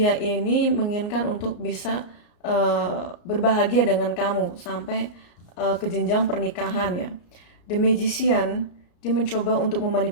ini menginginkan untuk bisa berbahagia dengan kamu sampai ke jenjang pernikahan ya. The Magician, dia mencoba untuk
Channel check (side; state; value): right; late; 34 ms